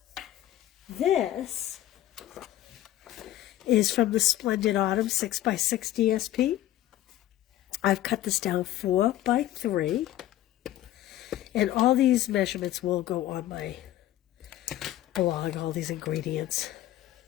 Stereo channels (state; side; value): quieter; right; 13.6 dB